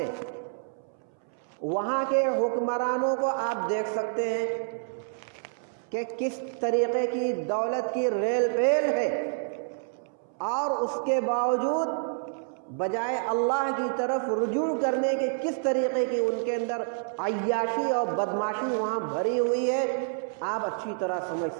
وہاں کے حکمرانوں کو آپ دیکھ سکتے ہیں کہ کس طریقے کی دولت کی ریل پیل ہے، اور اس کے باوجود بجائے اللہ کی طرف رجوع کرنے کے کس طریقے کی ان کے اندر عیاشی اور بدماشی وہاں بھری ہوئی ہے، آپ اچھی طرح سمجھ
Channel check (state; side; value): silent; left; 59 dB below the other